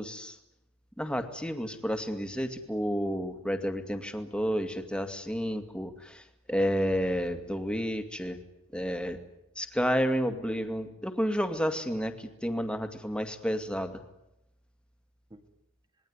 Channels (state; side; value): normal; both; correlation 0.89